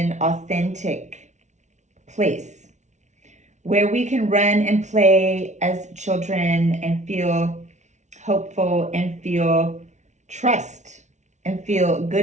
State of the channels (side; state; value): left; late; 0.34 ms